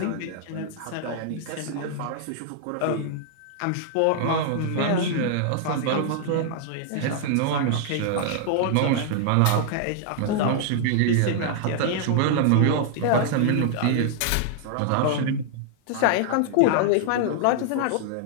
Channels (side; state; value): both; different; correlation 0.00